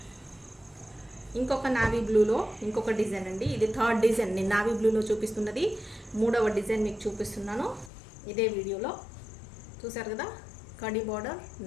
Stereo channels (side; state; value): right; drops out; at 7.9 s